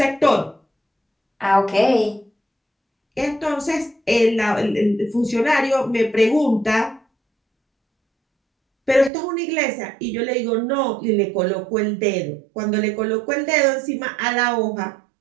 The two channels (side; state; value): left; drops out; at 9.1 s